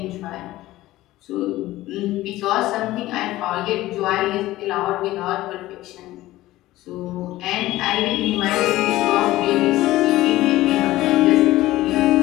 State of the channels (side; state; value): right; quieter; 16.5 dB